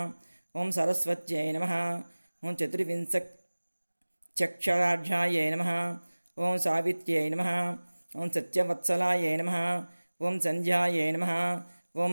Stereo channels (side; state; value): both; inverted; correlation -1.00